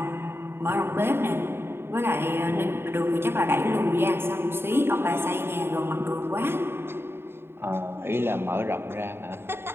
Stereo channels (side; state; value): left; late; 0.11 ms